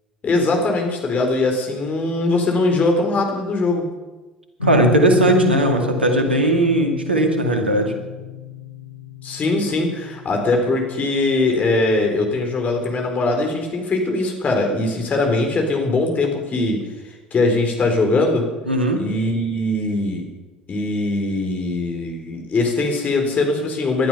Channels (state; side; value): normal; both; correlation 0.37